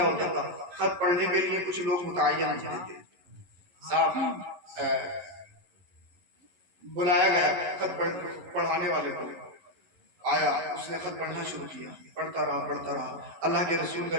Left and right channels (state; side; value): late; left; 11 ms